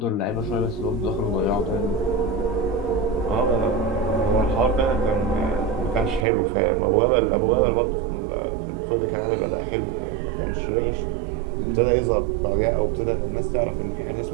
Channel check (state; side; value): drops out; left; at 6.2 s